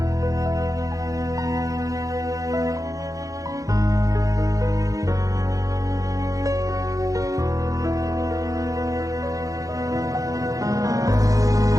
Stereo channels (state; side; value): late; left; 0.16 ms